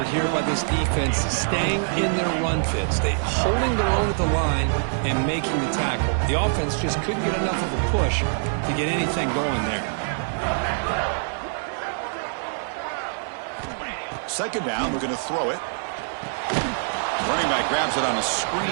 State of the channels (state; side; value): silent; left; digital silence